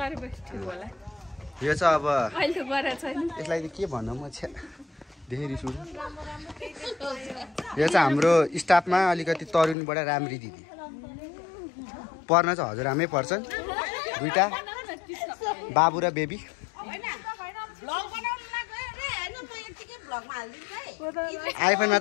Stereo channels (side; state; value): right; drops out; at 9.8 s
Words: ठिक होला। यो चाहिँ अब अहिले गरेको छैन। यसलाई के भन्नु म छ्या धेरै सुरु। यो चाहिँ हाम्रो स्टाफमा अलिकति तरुनीबाट राम्री दिदी पर्न चाहिँ हजुरआमै पर्छन्, दुईटा बाबु र बेबी। आइफोनमा